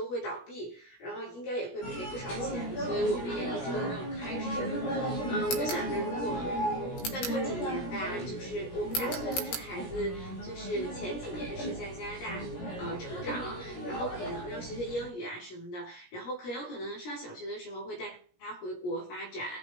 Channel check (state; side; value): late; right; 17 ms